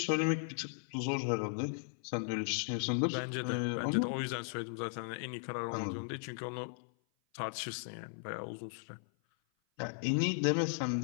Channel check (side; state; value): right; silent; 53 dB below the other